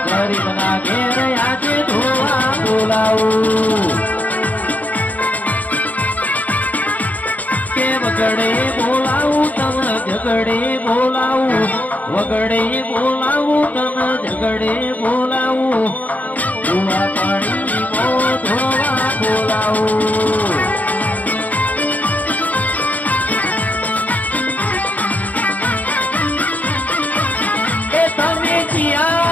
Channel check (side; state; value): right; late; 0.078 ms